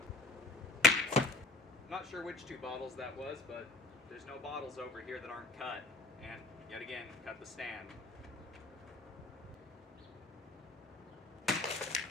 I'm not sure which 2 bottles that was, but there's no bottles over here that aren't cut. And yet again, cut the stand.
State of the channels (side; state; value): right; quieter; 3.2 dB